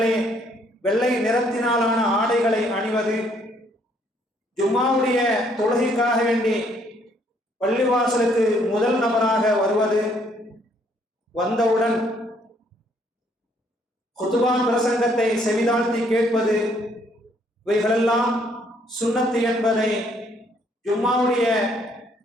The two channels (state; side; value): normal; both; correlation 0.67